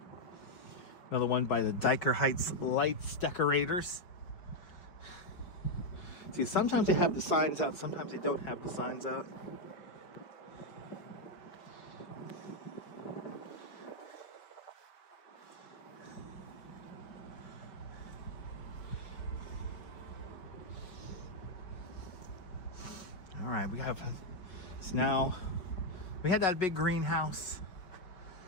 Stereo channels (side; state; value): right; late; 5.3 ms